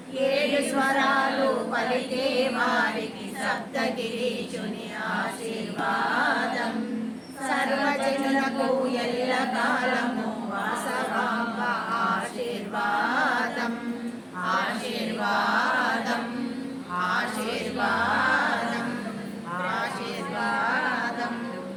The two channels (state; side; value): identical; both; correlation 1.00